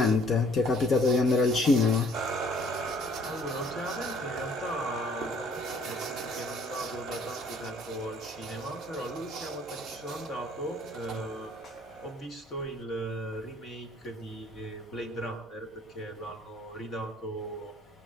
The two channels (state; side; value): normal; both; correlation 0.59